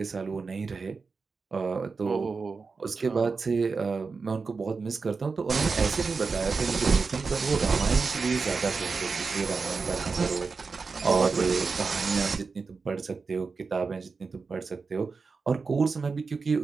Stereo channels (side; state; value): left; quieter; 4.7 dB